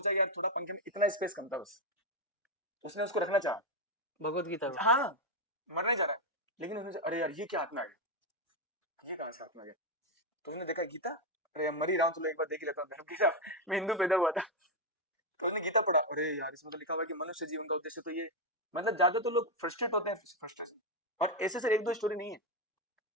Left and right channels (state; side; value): normal; both; correlation 0.04